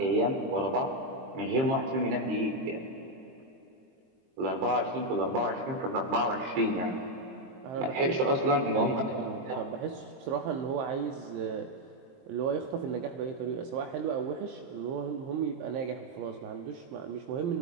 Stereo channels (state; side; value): late; left; 22 ms